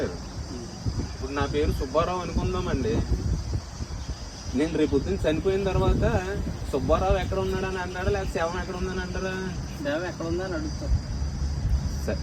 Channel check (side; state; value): both; identical; correlation 1.00